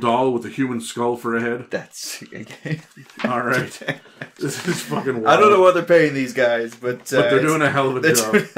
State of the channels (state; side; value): identical; both; correlation 1.00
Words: with a human skull for a head. That's... All right. This is fucking wild. I don't know what they're paying these guys, but they're doing a hell of a job. They're doing